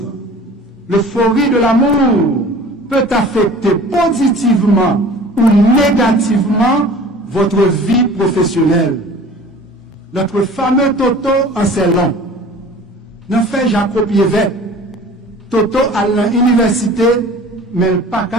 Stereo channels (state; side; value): normal; both; correlation 0.44